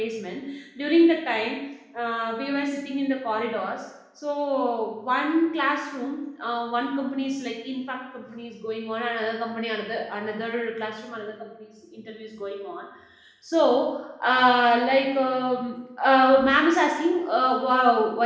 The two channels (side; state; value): both; identical; correlation 1.00